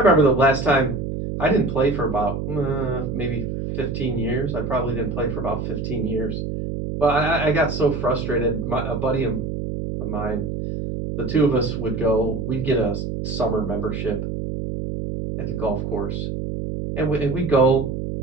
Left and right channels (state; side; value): noise; right; hum, 4 dB below the sound